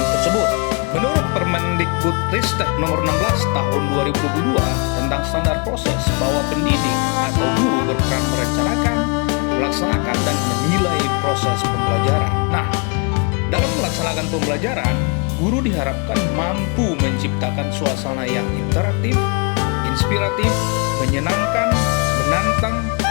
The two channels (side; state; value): right; quieter; 34.7 dB